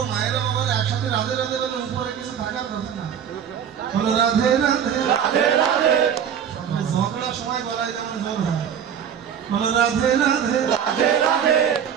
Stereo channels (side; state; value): left; quieter; 8.4 dB